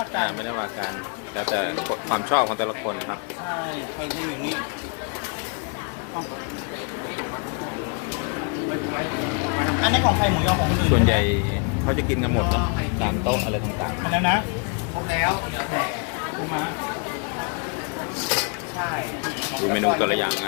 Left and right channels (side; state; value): right; quieter; 37.1 dB